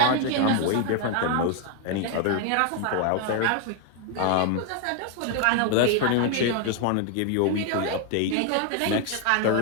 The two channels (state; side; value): different; both; correlation 0.01